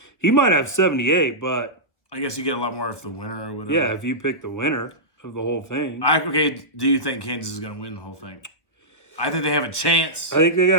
He might have 78, but I guess you get a lot more if the winner or whatever. Yeah, if you pick the winner of the whole thing. Do you think Kansas is going to win the whole thing? I think they have a chance. I think they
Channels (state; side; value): late; right; 1.2 ms